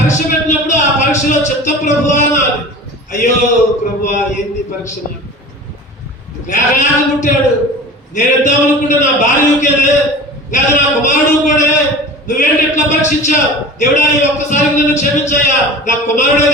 పెట్టినప్పుడు ఆ పరీక్షలో చిత్త ప్రభువా అనాలి. అయ్యో ప్రభువా, ఏంది పరీక్ష? లేక పుట్టాడు, నేను ఇద్దాం అనుకుంటే నా భార్య ఊకేదే, లేదా నా కుమారుడు కూడా. నువ్వేంటి ఎట్లా పరీక్షించావు? దేవుడా, ఈ ఒక్కసారికి నన్ను క్షమించాయా, నా కుమారుడే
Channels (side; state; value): both; normal; correlation 0.36